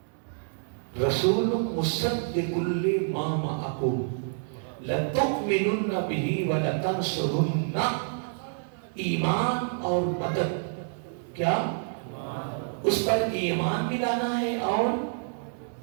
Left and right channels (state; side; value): silent; left; digital silence